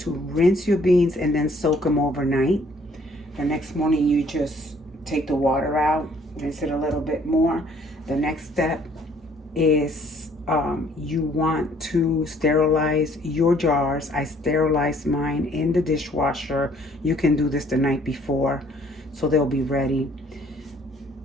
rinse your beans and then soak them overnight. The next morning you just take the water out, rinse it a little bit more. The next step is you want to sterilize your jars. I sterilized mine in the dishwasher. You can do this the night before so they'll be ready.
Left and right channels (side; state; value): both; normal; correlation 0.60